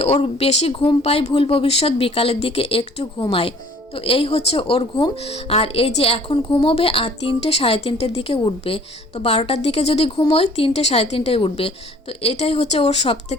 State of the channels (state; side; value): normal; both; correlation 0.53